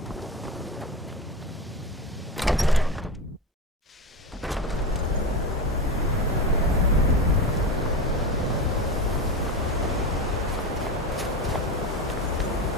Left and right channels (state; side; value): normal; both; correlation 0.21